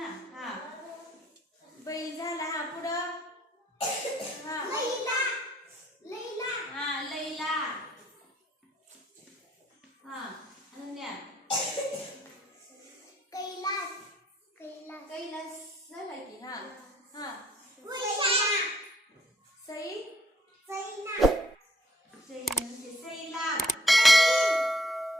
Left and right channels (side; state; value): both; normal; correlation 0.66